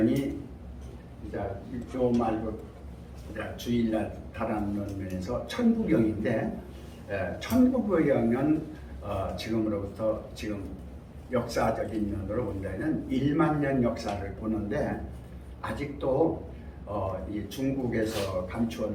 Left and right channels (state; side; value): identical; both; correlation 1.00